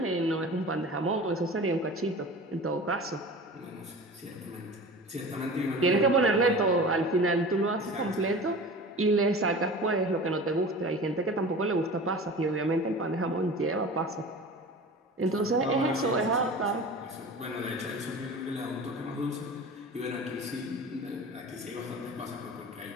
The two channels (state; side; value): normal; both; correlation 0.36